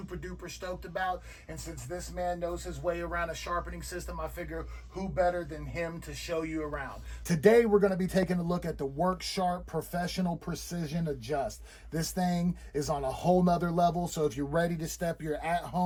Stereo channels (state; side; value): identical; both; correlation 1.00